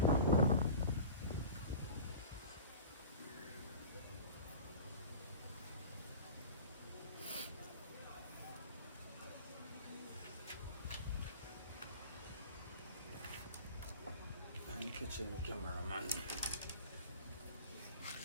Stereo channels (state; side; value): inverted; both; correlation -0.37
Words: Catching the cameraman.